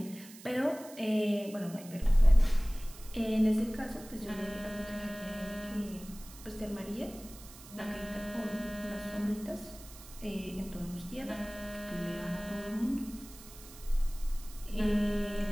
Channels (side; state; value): right; noise; hiss, 18 dB below the sound